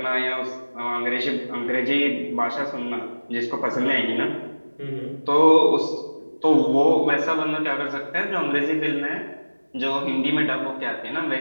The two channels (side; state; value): both; inverted; correlation -1.00